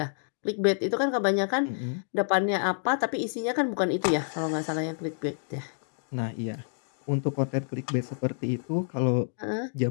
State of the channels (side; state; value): right; silent; digital silence